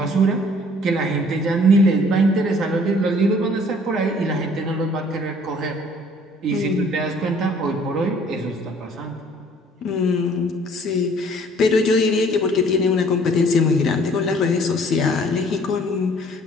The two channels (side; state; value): both; normal; correlation 0.56